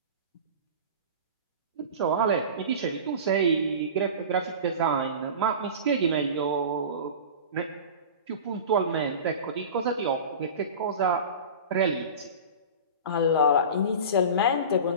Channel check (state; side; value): inverted; both; correlation -0.32